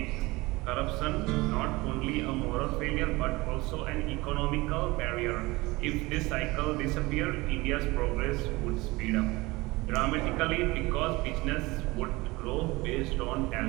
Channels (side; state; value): left; quieter; 22.0 dB